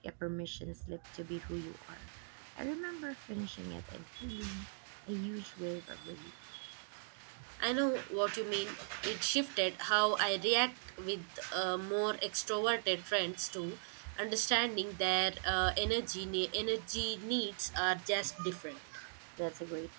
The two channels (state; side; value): silent; left; digital silence